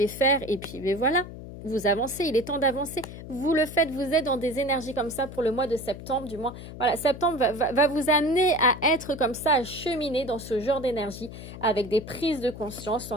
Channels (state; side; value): noise; left; hum, 12 dB below the sound